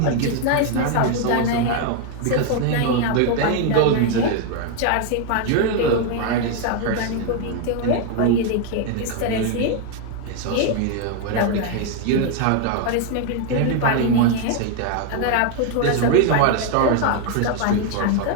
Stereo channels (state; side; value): different; both; correlation 0.00